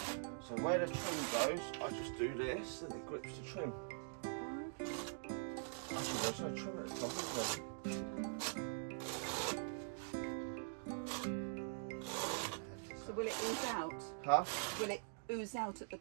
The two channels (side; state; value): left; silent; digital silence